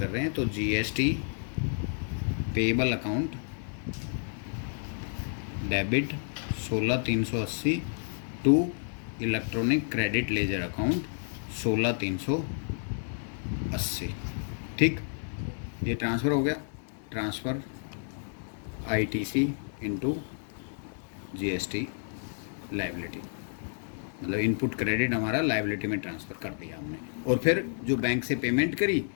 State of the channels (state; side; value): silent; right; 57 dB below the other